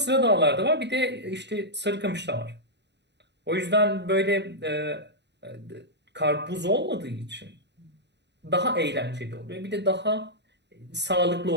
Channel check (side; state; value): left; late; 0.50 ms